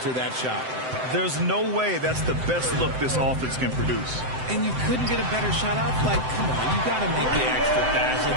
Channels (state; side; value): late; left; 7.8 ms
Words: that shot. There's no way that's the best look this offense can produce. And you couldn't get a better shot off? Like, come on, you got to make the extra pass. And